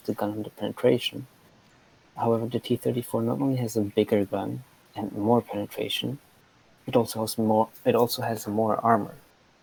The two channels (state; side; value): identical; both; correlation 1.00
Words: the gun and the penetration. However, the T-34 not only has a bigger gun and more penetration, it also has more armor.